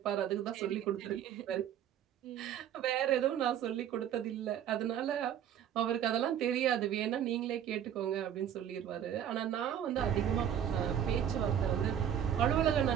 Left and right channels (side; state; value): left; quieter; 9.7 dB